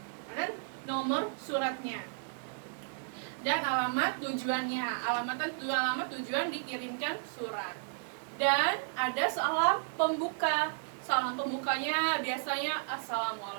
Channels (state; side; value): silent; left; digital silence